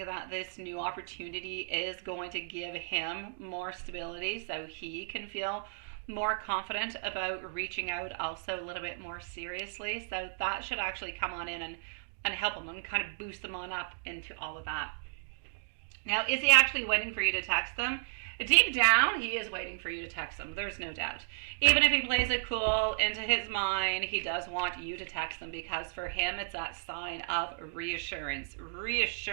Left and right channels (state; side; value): silent; left; digital silence